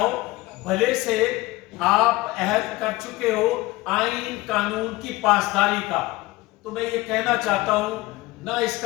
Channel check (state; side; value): quieter; right; 19.7 dB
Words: بھلے سے آپ عہد کر چکے ہو آئین قانون کی پاسداری کا. تو میں یہ کہنا چاہتا ہوں، نہ اس